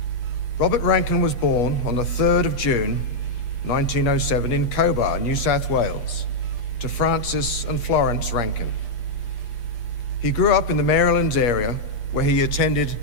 Robert Rankin was born on the 3rd of June 1907 in Cobar, New South Wales, to Francis and Florence Rankin. He grew up in the Marylands area, where he attended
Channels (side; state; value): right; late; 8.4 ms